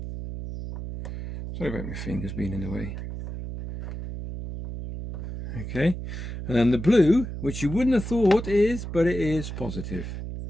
Sorry about my fingers being in the way. Okay, and then the blue, which you wouldn't have thought is, but it is positive.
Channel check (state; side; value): noise; right; hum, 7 dB below the sound